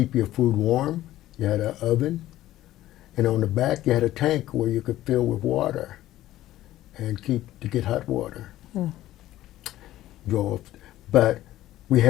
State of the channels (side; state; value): right; quieter; 14.6 dB